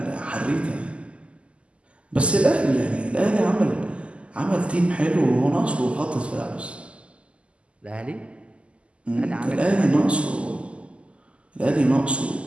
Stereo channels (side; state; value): left; late; 0.056 ms